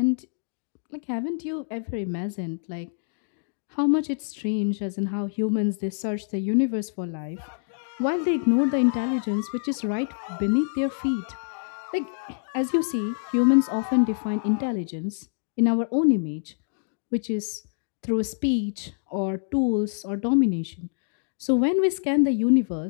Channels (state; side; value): silent; right; digital silence